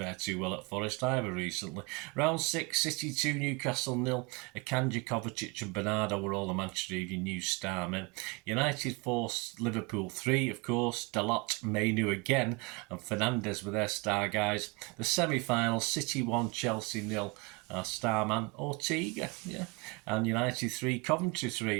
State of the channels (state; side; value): quieter; left; 28.7 dB